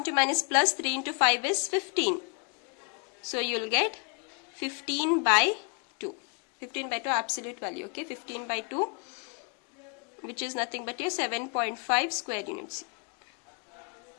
minus plus 3 into 5 is 15. So you will get 15 by 2. 15 by 2 absolute value, okay? 15 by 2, which is nothing but your 7.5 square units.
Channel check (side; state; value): right; quieter; 37.3 dB